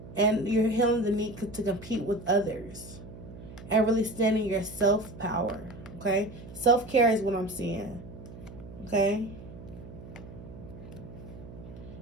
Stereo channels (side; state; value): right; noise; hum, 15 dB below the sound